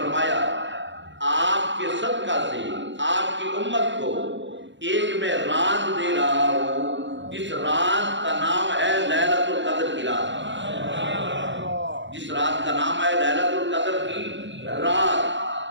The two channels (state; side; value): late; left; 0.54 ms